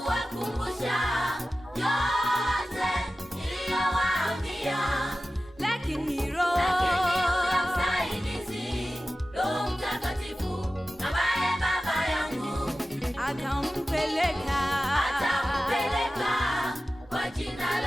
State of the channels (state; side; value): normal; both; correlation 0.95